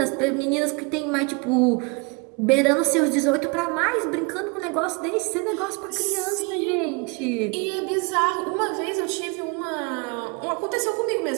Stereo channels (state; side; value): quieter; left; 30.4 dB